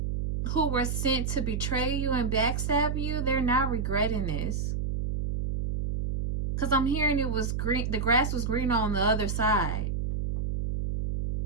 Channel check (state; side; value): noise; right; hum, 1 dB below the sound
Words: who were sent to betray you and backstab you, they're not regretting this. Because I'm hearing it was green, the grass was green on the other side.